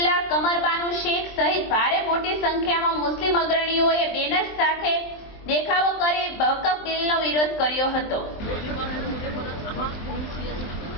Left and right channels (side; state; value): right; late; 23 ms